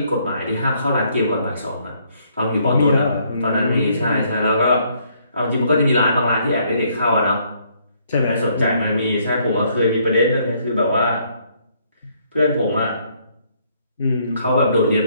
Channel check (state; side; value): inverted; both; correlation -0.68